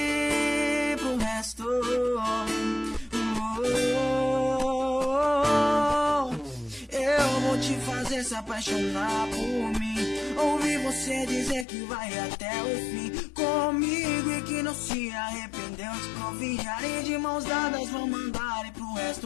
pro resto. Eu vou te fazer se apaixonar por mim. Ouvir você dizer que vai até o fim comigo e que não se arrependeu de confiar. E de mãos dadas vão mandar e pro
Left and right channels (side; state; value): right; drops out; at 11.7 s